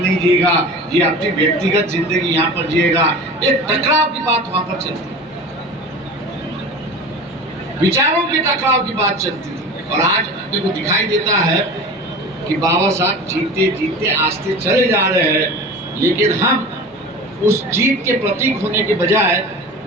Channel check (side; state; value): both; normal; correlation 0.35